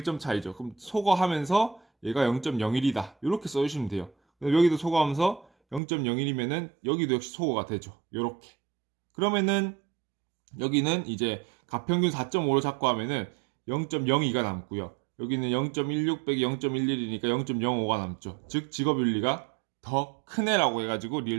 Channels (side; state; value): left; drops out; at 5.8 s